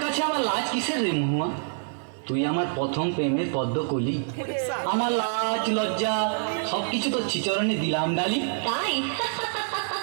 কাছে আমার লাজ কিসের রে মহুয়া? তুই আমার প্রথম প্রেমের পদ্ম কলি। আমার লাজ লজ্জা সবকিছু তোর চিচরণে দিলাম ডালি। তাই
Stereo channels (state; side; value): silent; left; 58 dB below the other